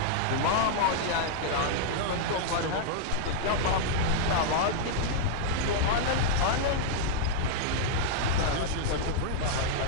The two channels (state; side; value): different; both; correlation -0.01